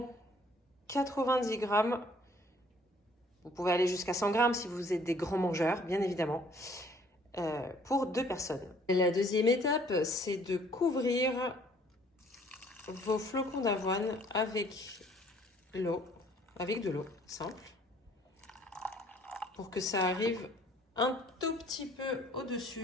90 grammes. Vous pouvez aller jusqu'à 100 grammes si vous êtes des grands mangeurs, bien évidemment. Pour deux personnes. Et la deuxième étape, c'est de couvrir vos flocons d'avoine avec l'eau, avec de l'eau simple, pour que ça arrive un tout petit peu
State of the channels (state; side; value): normal; both; correlation 0.58